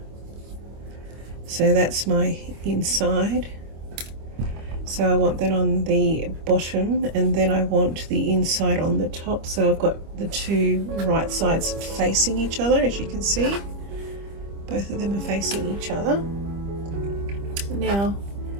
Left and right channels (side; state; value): left; late; 25 ms